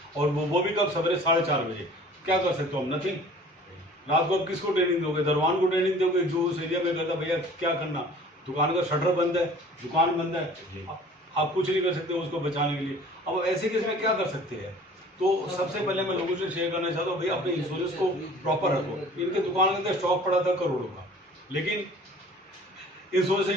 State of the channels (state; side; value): normal; both; correlation 0.48